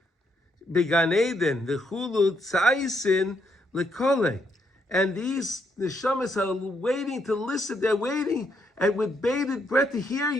Began Eden, the Chulu Tzaisin Lekole. And these Neshamos are waiting to listen. They're waiting and with bated breath to hear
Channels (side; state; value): both; normal; correlation 0.75